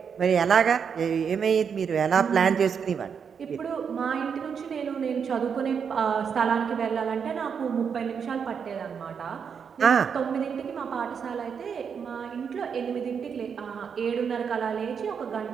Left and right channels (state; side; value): quieter; left; 6.8 dB